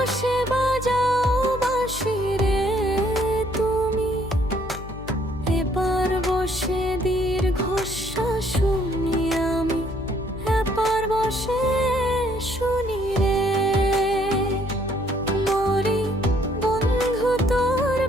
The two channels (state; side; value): noise; left; hum, 12 dB below the sound